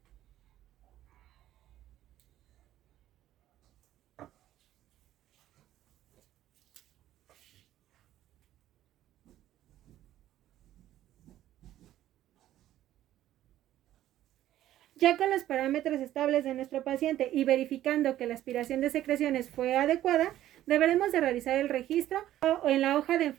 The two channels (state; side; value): quieter; left; 13.2 dB